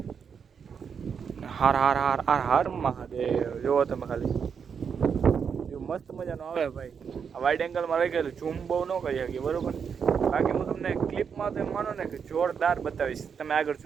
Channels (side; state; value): left; quieter; 6.7 dB